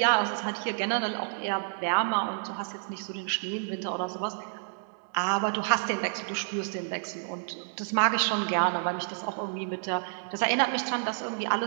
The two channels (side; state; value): left; silent; 58 dB below the other